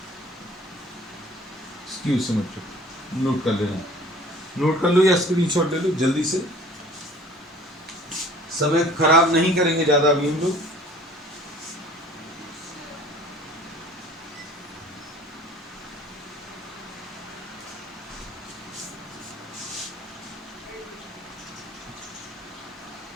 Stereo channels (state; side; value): normal; both; correlation 0.49